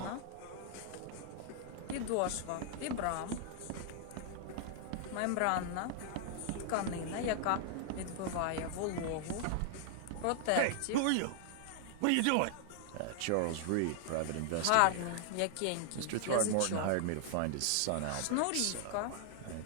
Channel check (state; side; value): different; both; correlation 0.00